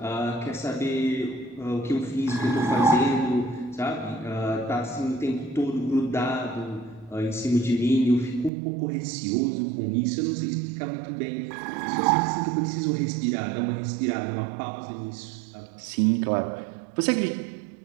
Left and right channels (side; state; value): left; drops out; at 8.5 s